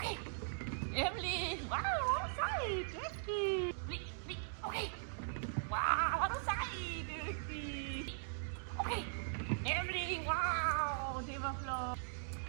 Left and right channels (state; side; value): silent; left; digital silence